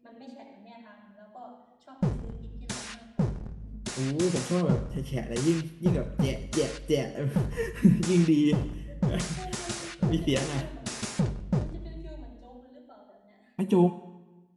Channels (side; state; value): both; identical; correlation 1.00